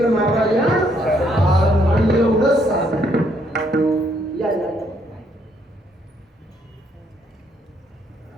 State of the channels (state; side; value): normal; both; correlation 0.71